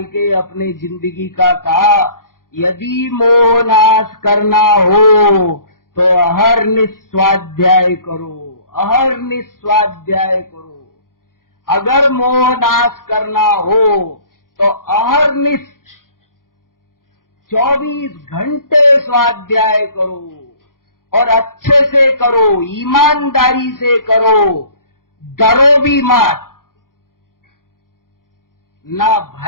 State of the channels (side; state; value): right; late; 0.91 ms